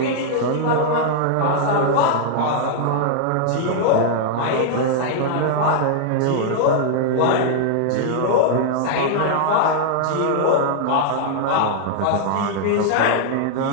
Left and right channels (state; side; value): different; both; correlation -0.01